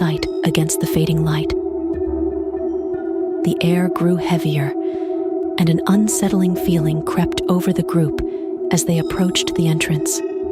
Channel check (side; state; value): both; identical; correlation 1.00